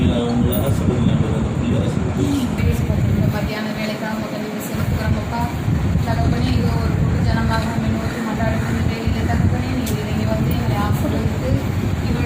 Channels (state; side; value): identical; both; correlation 1.00